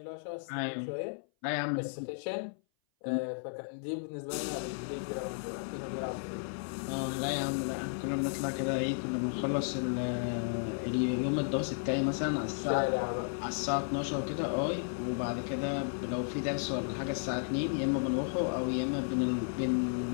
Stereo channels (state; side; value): silent; right; 55 dB below the other